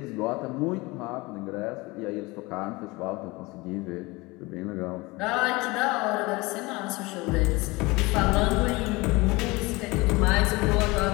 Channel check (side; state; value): right; quieter; 23.5 dB